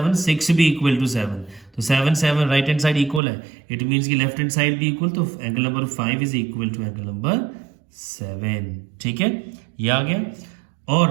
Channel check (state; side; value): drops out; left; at 3.2 s